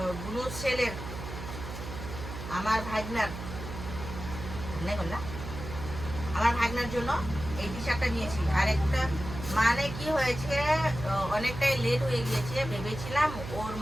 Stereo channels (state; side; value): noise; right; hum, 9 dB below the sound